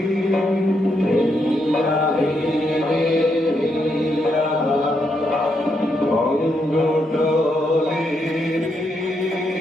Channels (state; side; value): normal; both; correlation 0.79